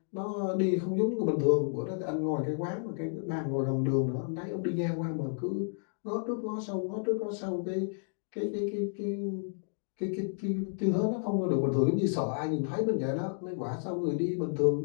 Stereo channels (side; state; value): right; silent; digital silence